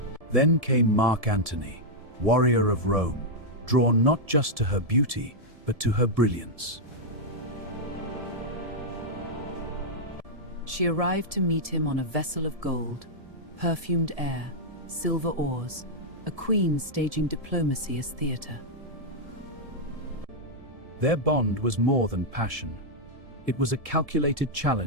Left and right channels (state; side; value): late; left; 1.7 ms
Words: Then came Mark Antony, warrior of Rome, drawn not just to her beauty, but to her brilliance. She arrived to meet him on a vessel of gold, perfumed air, silver oars, a queen staging diplomacy as theater. Their bond was more than passion. It was a calculated